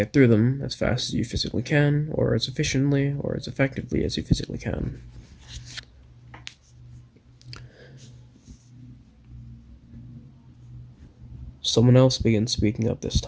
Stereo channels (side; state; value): both; identical; correlation 1.00